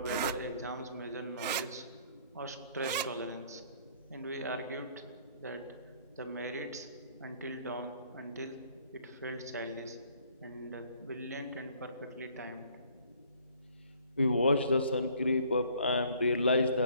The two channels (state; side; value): inverted; both; correlation -0.59